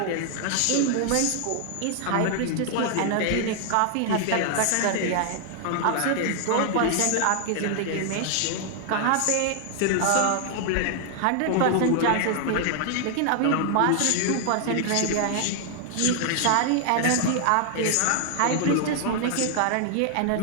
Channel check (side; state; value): both; different; correlation 0.00